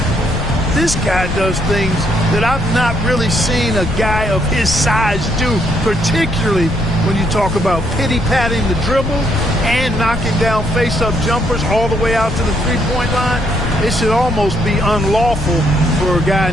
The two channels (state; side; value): noise; left; rumble, 5 dB below the sound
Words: This guy does things that I've not really seen a guy of his size do, particularly when you talk about pity-patting the dribble and knocking down face-up jumpers all the way out to the three-point line. It should almost be unlawful for a guy